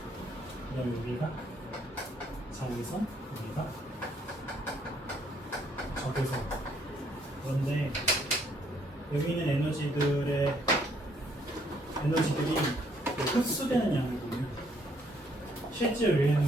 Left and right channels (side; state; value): both; normal; correlation 0.68